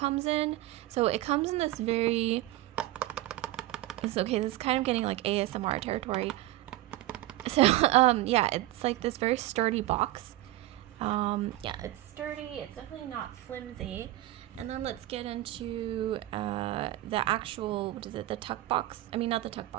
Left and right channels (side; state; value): left; quieter; 16.5 dB